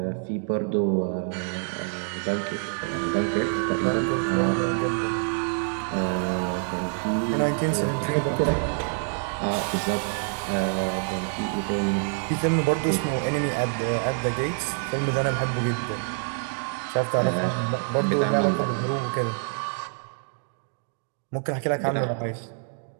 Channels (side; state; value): left; silent; 58 dB below the other